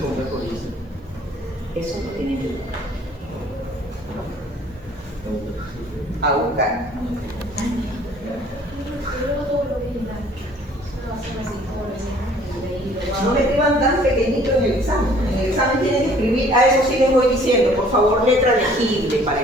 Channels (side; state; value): both; normal; correlation 0.56